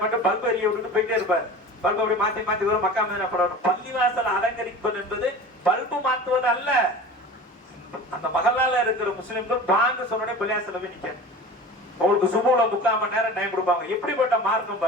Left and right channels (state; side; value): normal; both; correlation 0.37